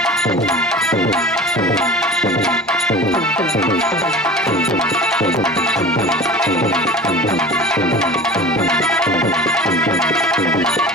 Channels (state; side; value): normal; both; correlation 0.37